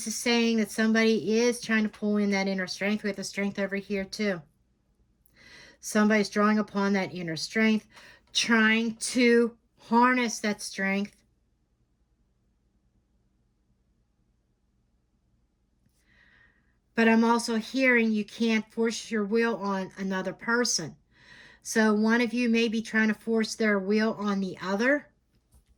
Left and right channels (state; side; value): identical; both; correlation 1.00